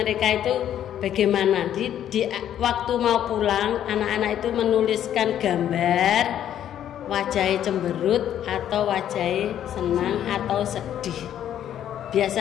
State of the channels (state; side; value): quieter; right; 10.6 dB